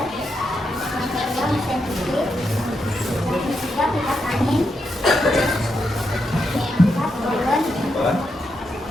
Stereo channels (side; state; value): both; normal; correlation 0.83